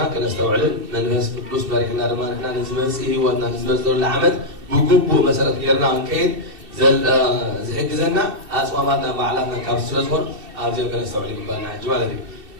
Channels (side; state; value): left; late; 2.7 ms